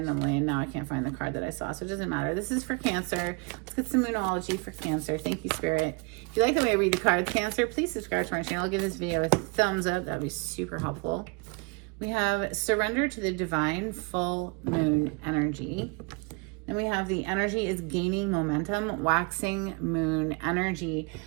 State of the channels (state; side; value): quieter; left; 31.4 dB